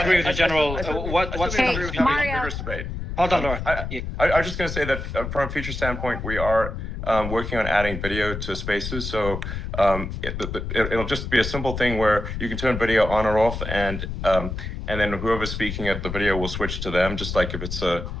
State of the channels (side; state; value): left; noise; rumble, 5 dB below the sound